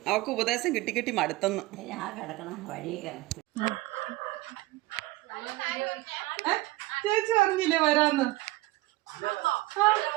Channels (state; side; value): quieter; left; 19.8 dB